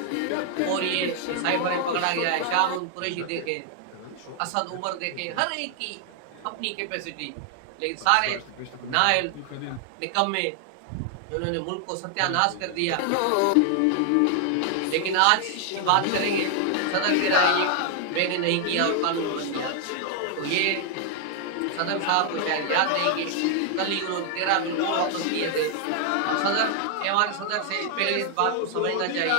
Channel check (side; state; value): both; different; correlation 0.00